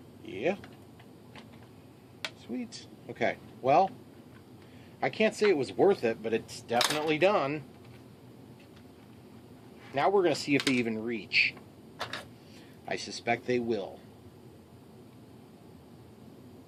yeah. Sweet. Okay. Well, I can't say it was worth it, but it's definitely done. Now we're going to see if they even reach. I suspect they will.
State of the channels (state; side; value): identical; both; correlation 1.00